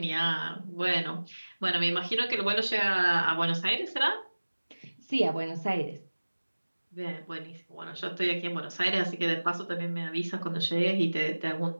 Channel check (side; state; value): both; inverted; correlation -1.00